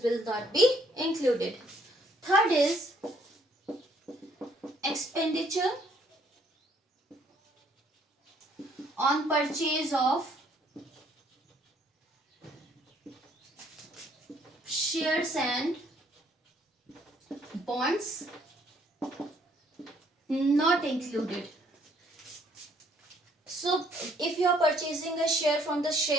will not be included. Third is expenditure on purchase of shares and bonds, not included. So if you are purchasing a share from the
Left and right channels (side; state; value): both; normal; correlation 0.65